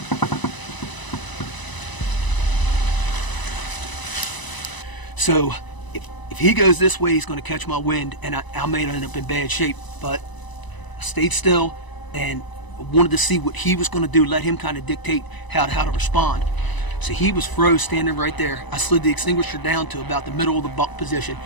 So if he goes this way, he's going to catch my wind, and I may end up in bad shape. But I stayed still and wanted to see what he was going to do, let him kind of dictate how to respond. So he was froze standing right there. I slid the extinguisher down to about the middle of the buck position.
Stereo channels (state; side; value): late; right; 1.0 ms